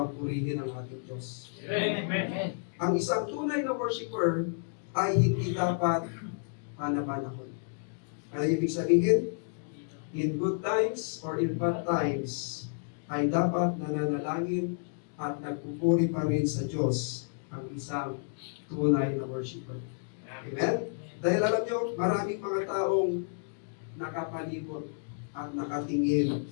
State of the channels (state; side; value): silent; right; digital silence